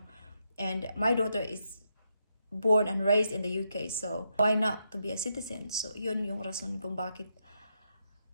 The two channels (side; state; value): both; inverted; correlation -0.81